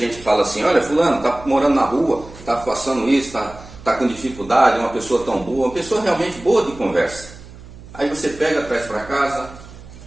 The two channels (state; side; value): noise; right; hum, 18 dB below the sound